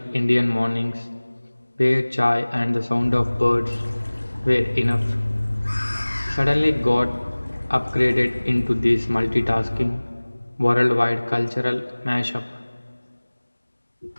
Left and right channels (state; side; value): inverted; both; correlation -1.00